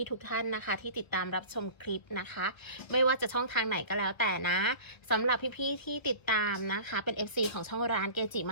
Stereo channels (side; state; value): right; late; 1.2 ms